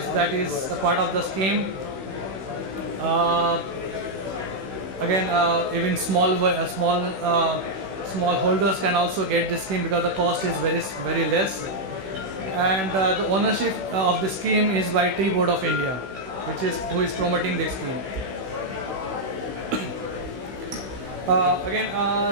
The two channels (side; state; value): left; late; 16 ms